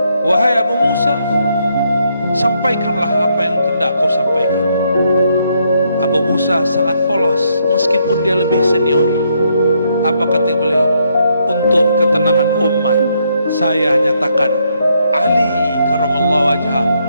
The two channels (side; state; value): both; inverted; correlation -0.75